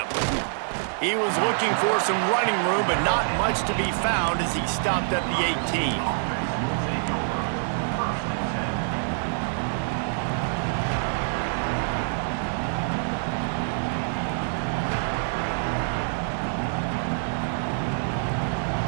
He was looking for some running room, but not much to be found as he stopped at the 18.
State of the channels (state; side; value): silent; left; digital silence